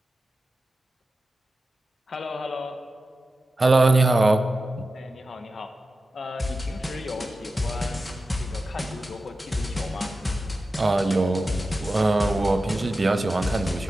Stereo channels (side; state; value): both; normal; correlation 0.92